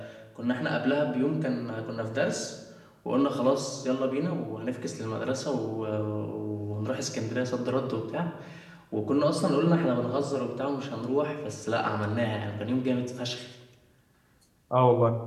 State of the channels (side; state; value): both; identical; correlation 1.00